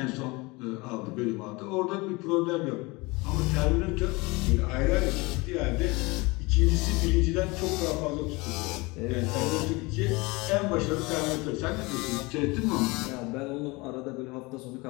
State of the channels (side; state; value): right; quieter; 24.6 dB